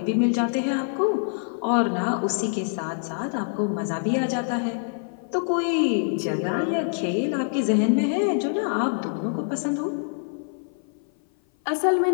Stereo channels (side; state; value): right; silent; 56 dB below the other